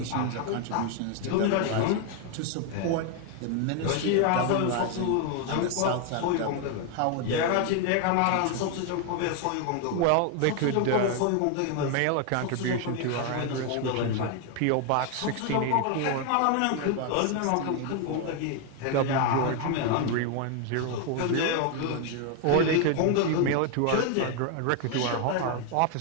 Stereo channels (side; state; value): both; different; correlation 0.01